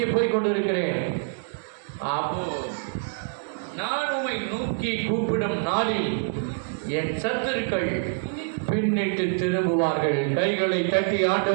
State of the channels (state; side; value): silent; left; digital silence